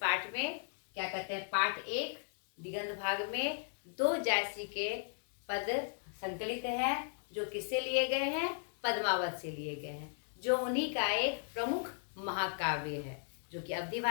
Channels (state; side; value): silent; right; digital silence